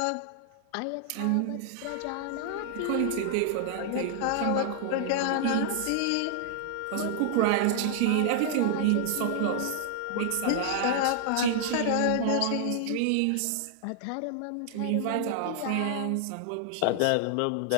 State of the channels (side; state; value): both; different; correlation -0.01